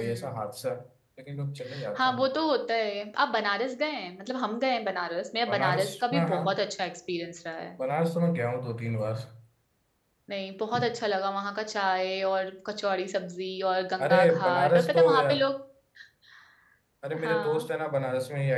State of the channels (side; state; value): both; identical; correlation 1.00